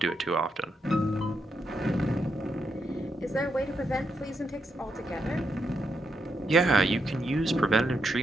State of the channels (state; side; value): normal; both; correlation 0.81